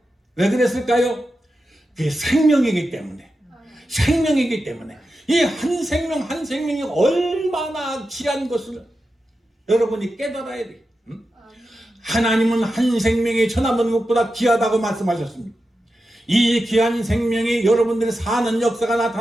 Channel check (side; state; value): both; normal; correlation 0.90